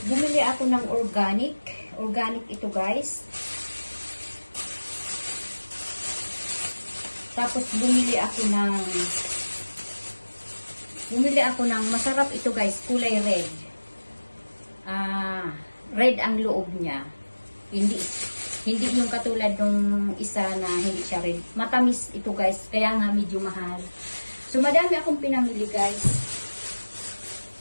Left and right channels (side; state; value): both; inverted; correlation -1.00